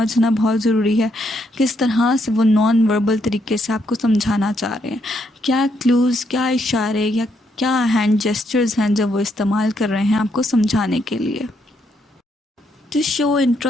बहुत ज़रूरी है. किस तरह से वो नॉन वर्बल तरीके से आपको समझाना चाह रहे हैं, क्या क्लूज़, क्या इशारे या क्या हैंड जेस्चर्स हैं जब वो इस्तेमाल कर रहे हैं आपको समझाने के लिए. To show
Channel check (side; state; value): both; normal; correlation 0.76